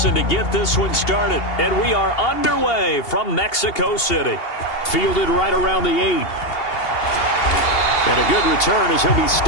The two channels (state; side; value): late; right; 2.8 ms